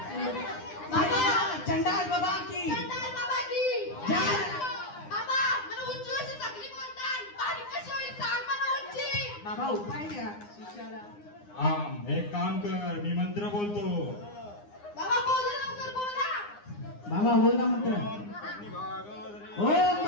बाबा चंडाल बाबा की जय. बाबा उपाय द्या शिष्याला. एक काम कर, मी मंत्र बोलतो. बाबा बोल ना मंत्र. ओम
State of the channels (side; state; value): right; late; 9.8 ms